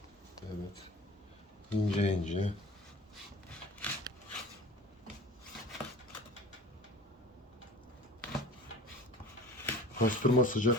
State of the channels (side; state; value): both; normal; correlation 0.39